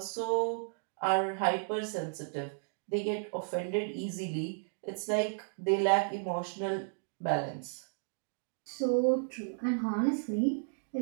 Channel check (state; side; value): silent; left; digital silence